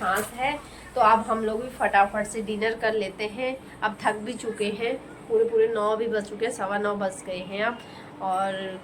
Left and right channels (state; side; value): identical; both; correlation 1.00